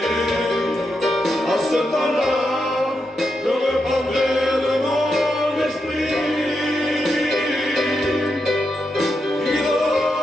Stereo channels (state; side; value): normal; both; correlation 0.85